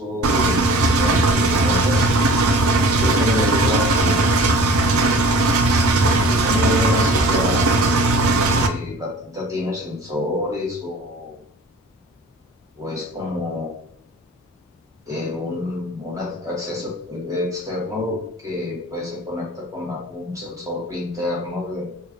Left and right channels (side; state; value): both; normal; correlation 0.44